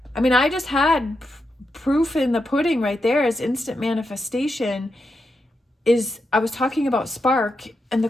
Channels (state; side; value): normal; both; correlation 0.85